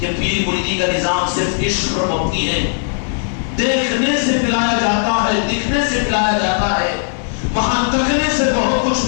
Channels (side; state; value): right; silent; 64 dB below the other